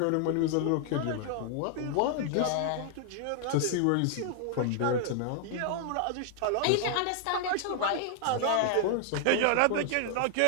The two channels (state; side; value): different; both; correlation 0.00